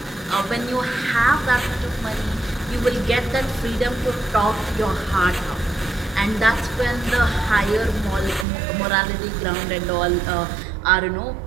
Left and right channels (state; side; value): drops out; left; at 8.5 s